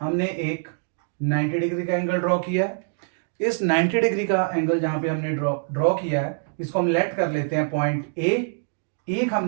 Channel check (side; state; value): left; silent; digital silence